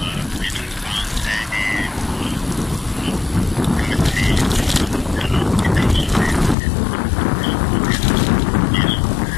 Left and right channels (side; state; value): right; drops out; at 6.6 s